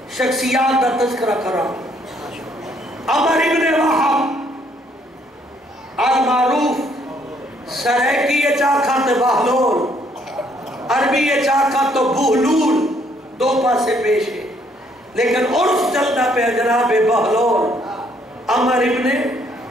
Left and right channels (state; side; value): normal; both; correlation 0.67